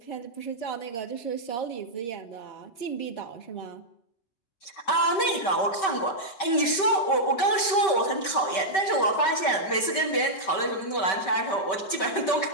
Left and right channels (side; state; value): right; late; 5.2 ms